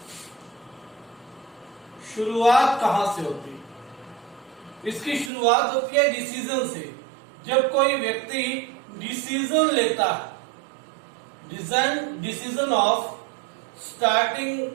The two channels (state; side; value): drops out; left; at 5.3 s